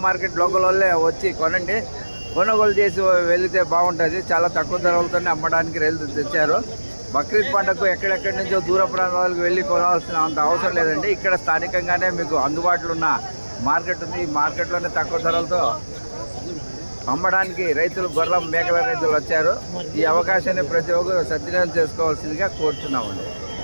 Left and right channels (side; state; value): both; inverted; correlation -1.00